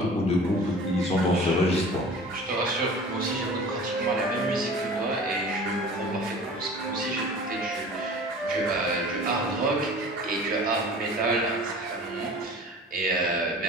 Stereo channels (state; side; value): normal; both; correlation 0.42